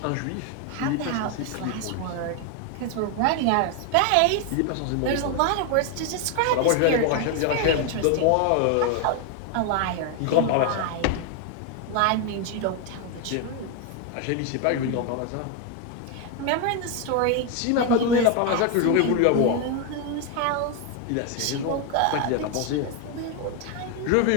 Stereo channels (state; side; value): different; both; correlation 0.01